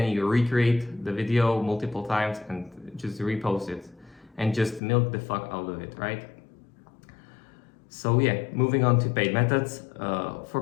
you recreate the video multiple times and just repost it and just milk the fuck out of it, right? So yeah, moving on to paid methods.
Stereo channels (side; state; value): right; drops out; at 4.8 s